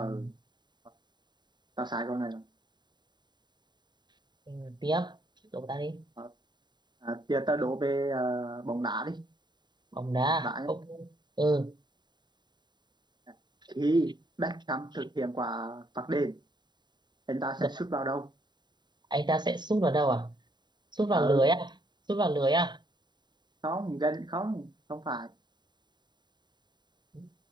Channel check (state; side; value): late; left; 0.21 ms